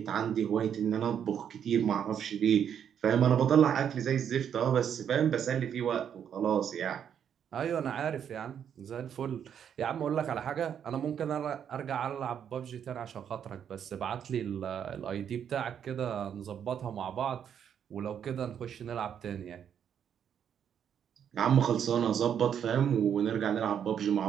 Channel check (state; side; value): quieter; left; 8.6 dB